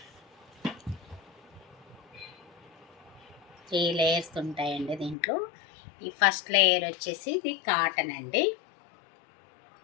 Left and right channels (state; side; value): drops out; right; at 5.2 s